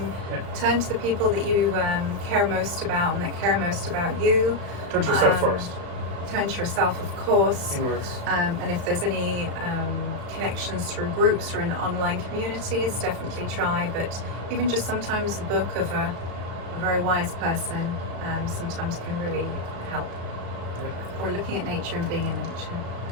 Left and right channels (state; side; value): late; left; 35 ms